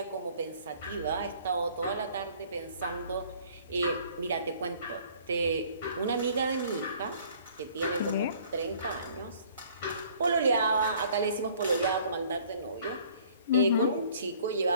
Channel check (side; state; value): both; inverted; correlation -0.55